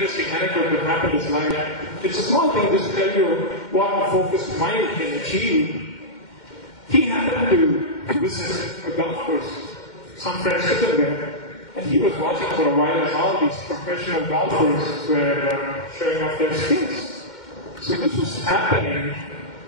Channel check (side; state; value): right; late; 2.1 ms